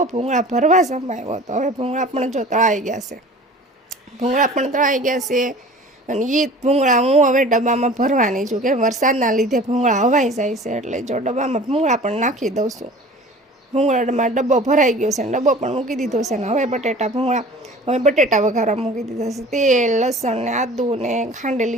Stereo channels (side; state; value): both; normal; correlation 0.43